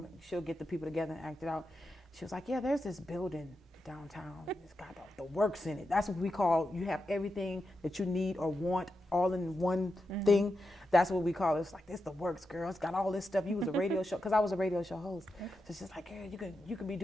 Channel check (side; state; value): both; normal; correlation 0.88